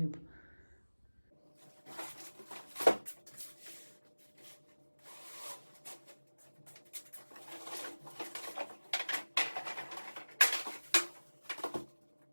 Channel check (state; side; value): inverted; both; correlation -1.00